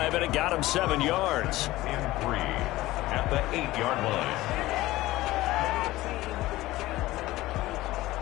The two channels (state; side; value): quieter; right; 17.4 dB